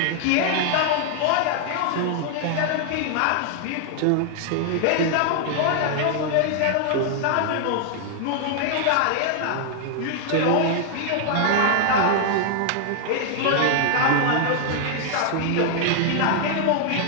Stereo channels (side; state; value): both; different; correlation 0.00